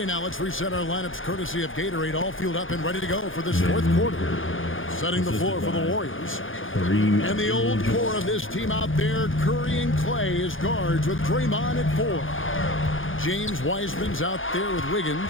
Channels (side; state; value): right; late; 0.58 ms